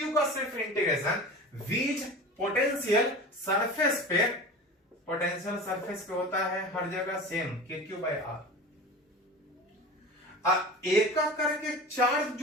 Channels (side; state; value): both; normal; correlation 0.34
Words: का सिर्फ इंटीग्रेशन। वीज पोटेंशियल सरफेस पे पोटेंशियल सरफेस पे होता है हर जगह सेम KQ/R। एक करके चार्ज